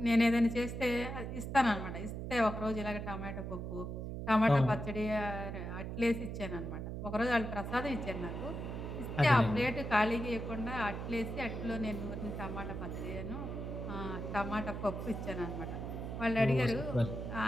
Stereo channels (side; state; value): right; noise; hum, 5 dB below the sound